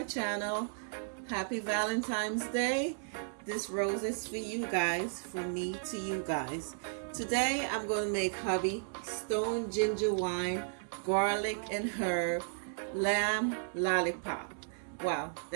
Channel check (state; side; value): silent; left; digital silence